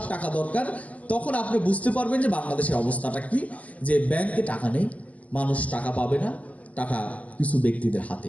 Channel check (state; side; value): late; right; 0.073 ms